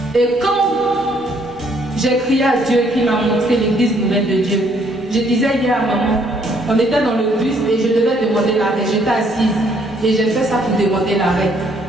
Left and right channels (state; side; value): normal; both; correlation 0.66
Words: Et quand j'ai crié à Dieu qui m'a montré l'église nouvelle de Dieu, je disais hier à maman, on était dans le bus et je devais demander l'arrêt. J'étais assise et j'ai fait ça pour demander l'arrêt.